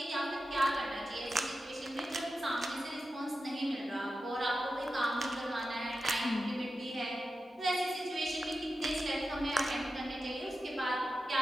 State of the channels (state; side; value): normal; both; correlation 0.92